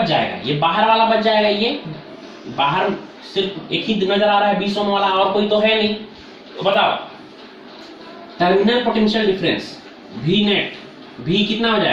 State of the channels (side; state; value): both; identical; correlation 1.00